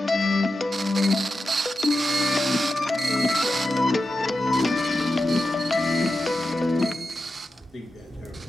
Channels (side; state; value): both; normal; correlation 0.90